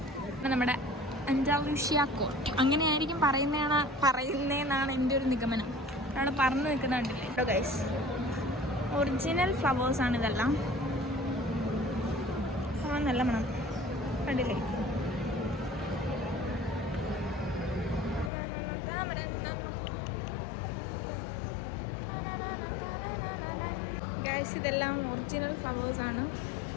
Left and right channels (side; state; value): right; drops out; at 18.3 s